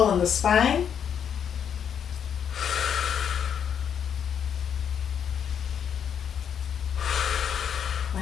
in the spine.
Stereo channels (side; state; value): right; quieter; 8.1 dB